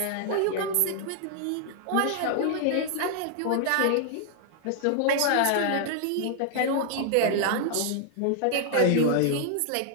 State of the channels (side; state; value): both; different; correlation 0.00